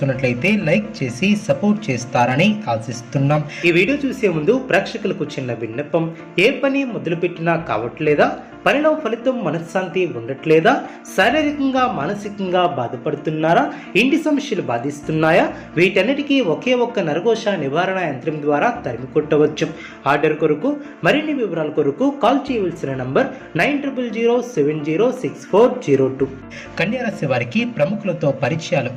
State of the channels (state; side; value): identical; both; correlation 1.00